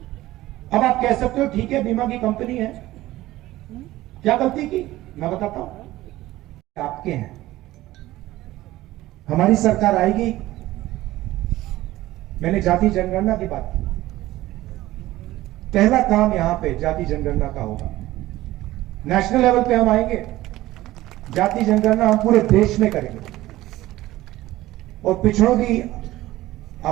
अब आप कह सकते हो ठीक है, बीमा की कंपनी है, क्या गलती की? मैं बताता हूं। आपके हैं, हमारी सरकार आएगी। मैंने जाति जनगणना की बात की। पहला काम यहां पे जाति जनगणना का होगा। नेशनल लेवल पे हम आएंगे, जाति जनगणना हम पूरे देश में करेंगे और पिछड़ों की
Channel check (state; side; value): quieter; left; 16.5 dB